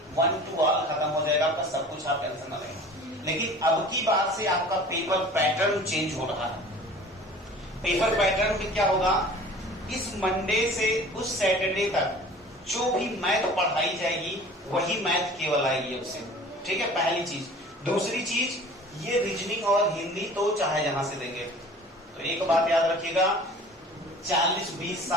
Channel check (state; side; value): normal; both; correlation 0.44